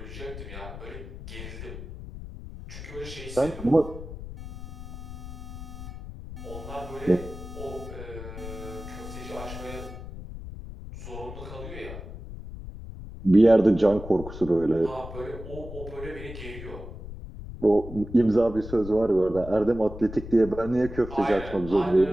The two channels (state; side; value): noise; left; rumble, 11 dB below the sound